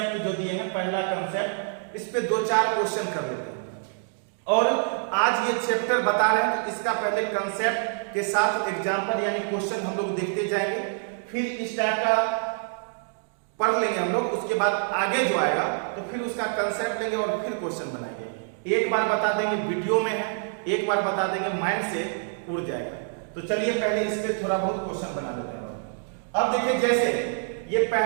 जो दिए हैं, पहला कंसेप्ट, इस पे 2-4 क्वेश्चन कर लेते हैं और आज ये चैप्टर बता रहे हैं तो इसका पहले कंसेप्ट के साथ एग्जांपल यानी क्वेश्चन हम लोग देखते जाएंगे, फिर इस टाइप का पढ़ लेंगे हम लोग, उसके बाद आगे जो आएगा तो फिर उसका कंसेप्ट लेंगे और फिर क्वेश्चन बनाएंगे। एक बार बता देंगे वीडियो में है, एक बार बता देंगे माइंड से उड़ जाएगा। तो चलिए पहले इस पे थोड़ा बहुत क्वेश्चन बना लेते हैं। अब देखिए जैसे ये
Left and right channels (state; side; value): silent; left; digital silence